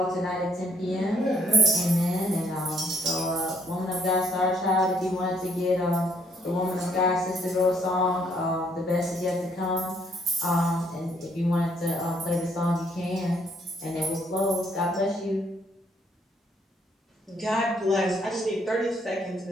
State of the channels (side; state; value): both; normal; correlation 0.68